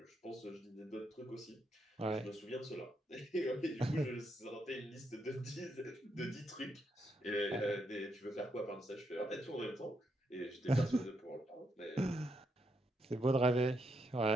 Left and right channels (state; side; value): normal; both; correlation 0.78